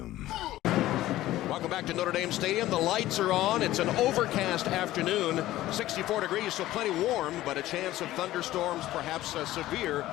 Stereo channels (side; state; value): right; quieter; 15.4 dB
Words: Welcome back to Notre Dame Stadium. The lights are on. It's an overcast afternoon, 64 degrees, so plenty warm, but a chance of thunderstorms, perhaps severe,